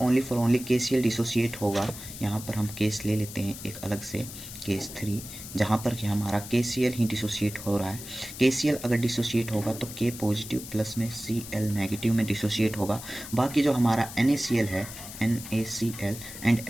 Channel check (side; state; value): left; noise; hiss, 12 dB below the sound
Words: ओनली KCl डिसोसिएट होगा, यहाँ पर हम केस ले लेते हैं एक अलग से, केस 3, जहाँ पर कि हमारा KCl ही डिसोसिएट हो रहा है। KCl अगर डिसोसिएट होगा तो K पॉजिटिव प्लस में Cl नेगेटिव में डिसोसिएट होगा। बाकी जो हमारा NaCl है, NaCl एंड